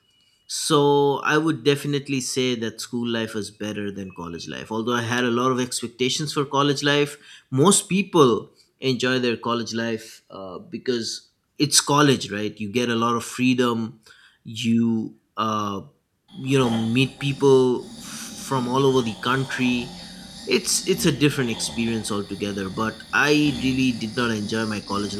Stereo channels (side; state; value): both; identical; correlation 1.00